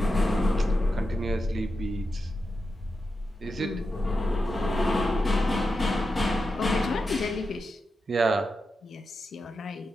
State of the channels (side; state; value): both; normal; correlation 0.89